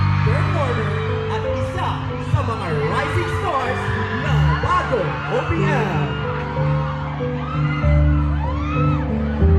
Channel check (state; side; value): identical; both; correlation 1.00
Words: performer, at isa sa mga rising stars ng bagong OPM.